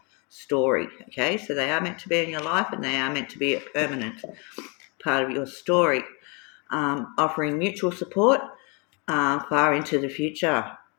story. Okay, so they are meant to be in your life and they are meant to be a permanent part of your story, offering mutual support far into the future.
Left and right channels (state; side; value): quieter; right; 32.8 dB